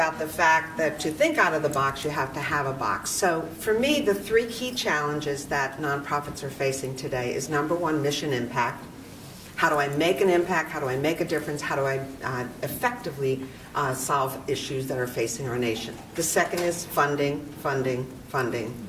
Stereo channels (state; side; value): identical; both; correlation 1.00